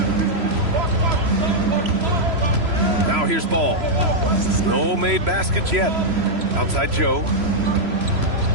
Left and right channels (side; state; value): left; late; 3.0 ms